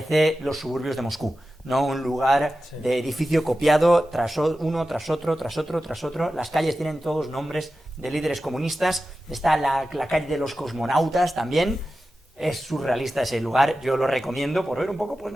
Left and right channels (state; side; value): normal; both; correlation 0.93